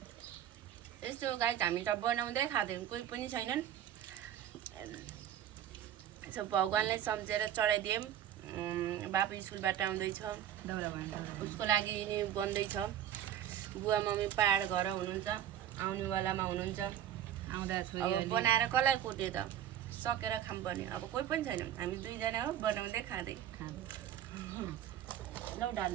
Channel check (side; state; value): left; quieter; 10.7 dB